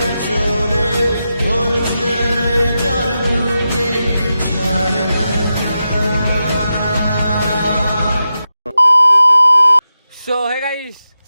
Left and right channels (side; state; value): both; inverted; correlation -0.90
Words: না চলে। তোর ছেড়ে যার বুকে ছাড়ে না। সো হে গাইস,